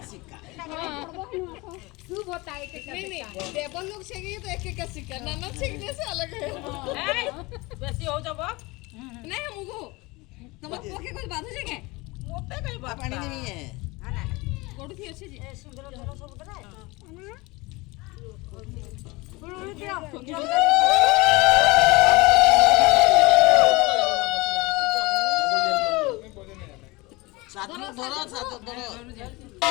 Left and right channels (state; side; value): quieter; right; 23.3 dB